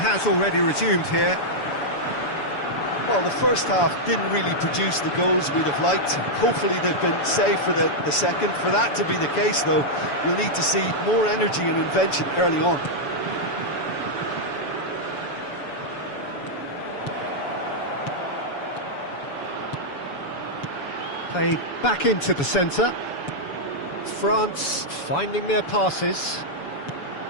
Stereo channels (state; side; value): late; right; 7.0 ms